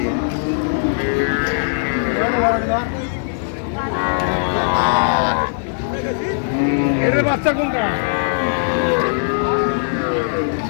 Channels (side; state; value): right; silent; 60 dB below the other